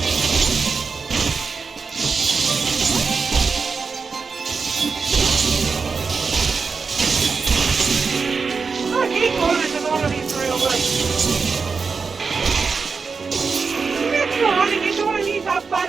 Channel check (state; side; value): quieter; left; 5.0 dB